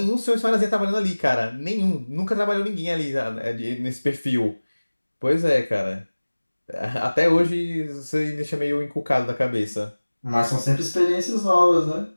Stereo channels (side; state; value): both; inverted; correlation -1.00